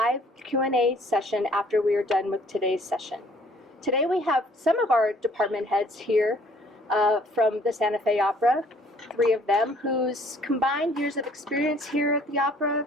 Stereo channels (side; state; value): both; normal; correlation 0.58